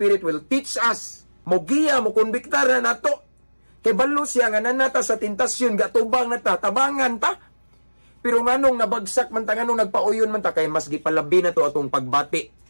will teach us. Mogiya, mo konbiktar na nato. Kay balo siya nga nanata sa tentasyon, gatubang na ta, tabangan ta. Pero nganong nabagsak man ta, nganong nagpauyon man ta, kay mas gipalabi na to atong pagbati.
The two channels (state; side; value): inverted; both; correlation -1.00